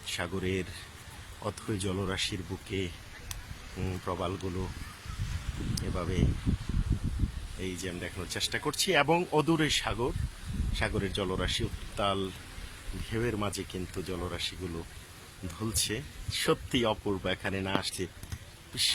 সাগরের অথই জলরাশির বুকে প্রবালগুলো এভাবে এই যে আমি দেখানোর চেষ্টা করছি, এবং অদূরে সাগর, সাগরের জলরাশি উত্তাল ঢেউয়ের মাঝে কিন্তু জলরাশিগুলো ধুলছে। সত্যি অপূর্ব, এখানে না আসলে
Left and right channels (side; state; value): both; identical; correlation 1.00